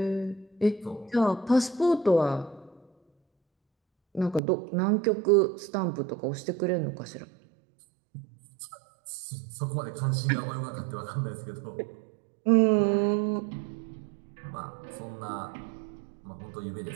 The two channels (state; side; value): drops out; left; at 4.4 s